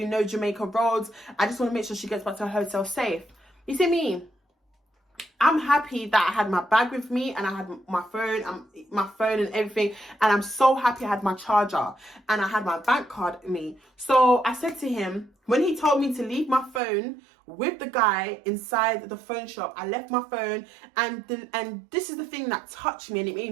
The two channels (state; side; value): drops out; left; at 16.8 s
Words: know Jamaica roads. I just want to make sure she gets back to her hotel safe. You see me? I'm happy that I had my bag with me, and I had my phone and everything, and I'm so happy I had my charger and I had my bank card with me. So I said to him, when he told me to leave my phone with the guy inside the phone shop, I left my phone, and this is the thing that touched me and it